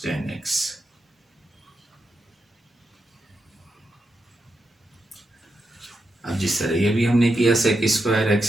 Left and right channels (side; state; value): both; normal; correlation 0.85